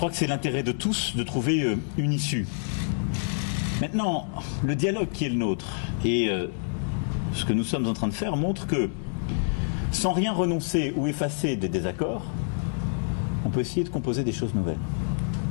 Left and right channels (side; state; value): right; silent; digital silence